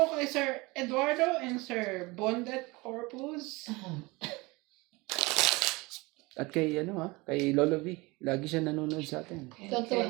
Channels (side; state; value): left; quieter; 23.9 dB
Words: kay Sir Eduardo and Sir Bondet Corpus. At kay kay Lolo V. Lagi siya nanonood sa atin.